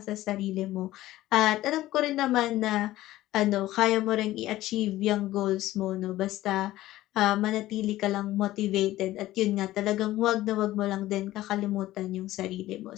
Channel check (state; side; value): quieter; right; 15.6 dB